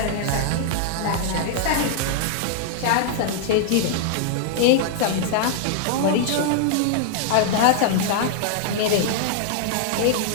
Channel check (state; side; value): different; both; correlation -0.01